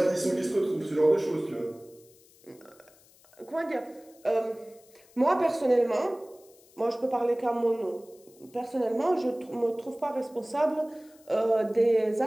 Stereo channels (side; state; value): left; noise; hiss, 28 dB below the sound